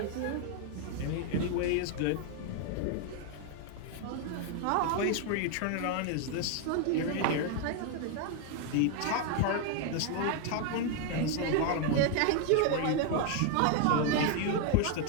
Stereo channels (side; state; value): both; different; correlation 0.00